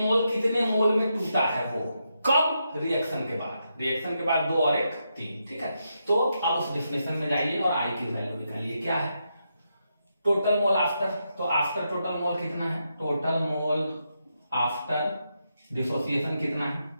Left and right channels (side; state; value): both; inverted; correlation -0.83